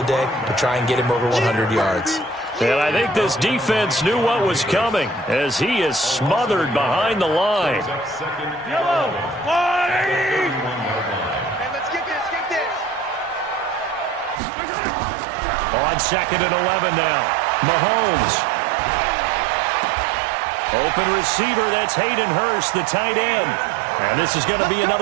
to try and get him over 100 yards. And I think this defense knew what was coming as he is smothered behind the line. Yellow. Hey, let's get this. On 2nd and 11 now. Mahomes. Open receiver, that's Hayden Hurst, the tight end. And this is going to be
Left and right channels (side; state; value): left; drops out; at 14.4 s